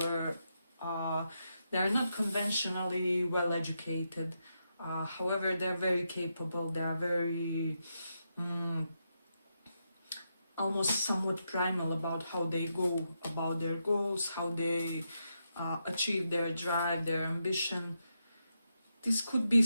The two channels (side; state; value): both; inverted; correlation -0.84